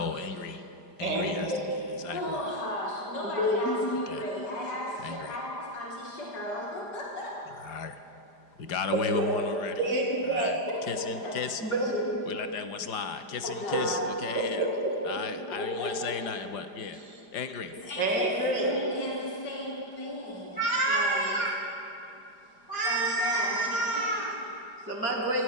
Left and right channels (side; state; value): right; late; 5.0 ms